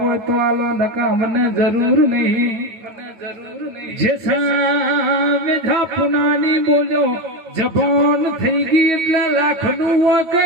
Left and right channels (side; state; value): left; late; 9.3 ms